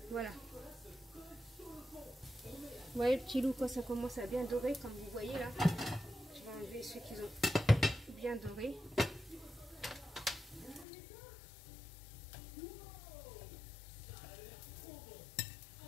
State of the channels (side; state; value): right; drops out; at 10.9 s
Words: Voilà. Vous voyez le petit loup, quand ça commence à bien dorer, comme vous voyez là. Je vais enlever ceux qui ont bien doré.